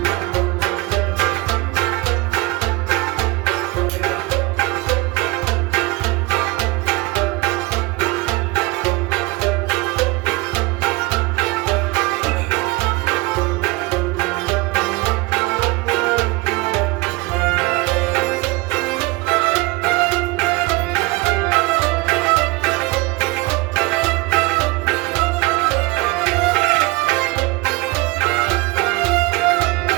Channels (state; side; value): quieter; left; 23.0 dB